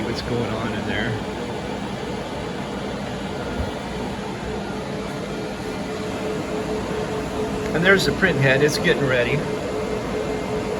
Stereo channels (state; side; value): identical; both; correlation 1.00